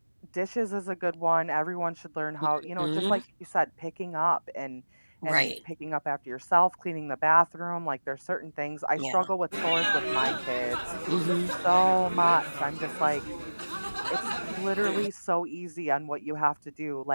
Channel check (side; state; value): both; inverted; correlation -1.00